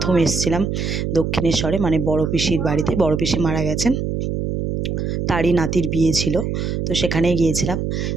এসেছিলাম দক্ষিণেশ্বরে, মানে বড় পিসির বাড়িতে। বড় পিসি মারা গেছেন, তারই নাতির বিয়ে ছিল, তো সেখানেই গিয়েছিলাম।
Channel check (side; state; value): right; noise; hum, 2 dB below the sound